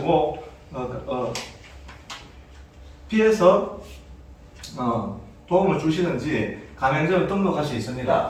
피해서 도움을 주시는지 가맹점을 등록할 수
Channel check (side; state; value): both; identical; correlation 1.00